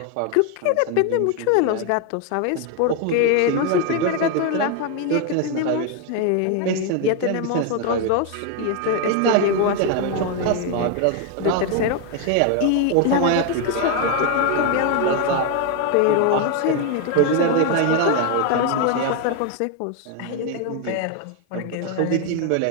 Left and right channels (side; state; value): both; different; correlation 0.01